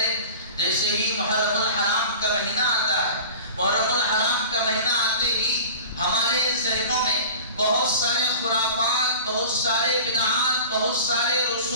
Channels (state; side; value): inverted; both; correlation -0.39